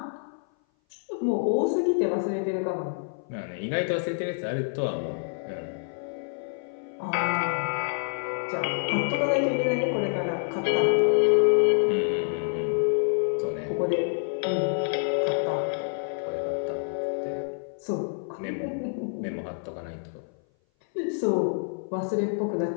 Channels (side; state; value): right; silent; 57 dB below the other